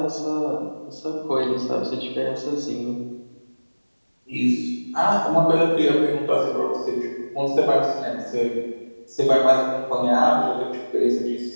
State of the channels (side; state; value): both; inverted; correlation -1.00